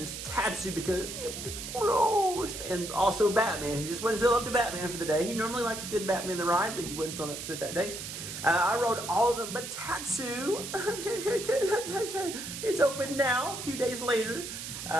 Tatsu because it was closed. And also Batman. He just wouldn't feel up to Batman for the day. He normally likes a good Batman the ride, but he wasn't feeling up to it that day. I rode all of them, but Tatsu, it's open now, a few days later.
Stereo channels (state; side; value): noise; right; hiss, 8 dB below the sound